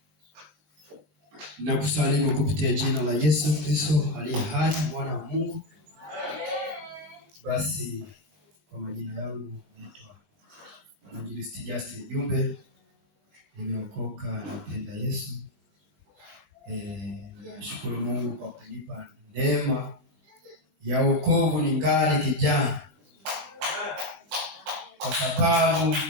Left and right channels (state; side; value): late; left; 19 ms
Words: Nakusalimu kupitia jina la Yesu Kristo aliye hai, mwana wa Mungu. Basi kwa majina yangu naitwa Mwinjilisti Justin Jumbe. Nimeokoka, nampenda Yesu. Nashukuru Mungu kwa kunipa neema ya wokovu ningali kijana. Kwa sababu